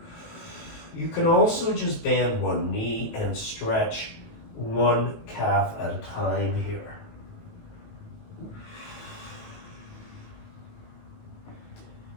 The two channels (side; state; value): right; late; 18 ms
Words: You can also just bend one knee and stretch one calf at a time here.